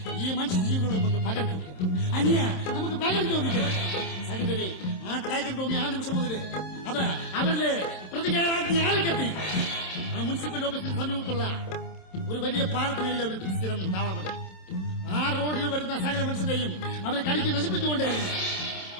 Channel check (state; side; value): late; right; 27 ms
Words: ഈ മനുഷ്യജീവികളോട് നമുക്ക് പകരം ചോദിക്കണം. അനിയ, നമുക്ക് പകരം ചോദിക്കണം. സഹോദരി, ആ ടൈഗർ ടോമി ആ നിമിഷം മുതൽ അത് അവരുടെ പ്രതികാരാജ്ഞ ആളിക്കെത്തി. ആ മുനിസിപ്പൽ ഓഫീസിന് സമീപത്തുള്ള ഒരു വലിയ പാലത്തിനരികെ അവർ സ്ഥിരം താവളമല്ല. ആ റോഡിൽ വരുന്ന സകല മനുഷ്യരെയും അവർ കടിച്ച് നശിപ്പിച്ചുകൊണ്ടേയിരുന്നു.